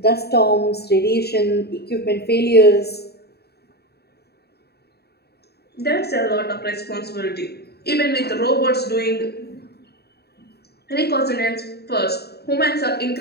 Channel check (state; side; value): late; right; 0.47 ms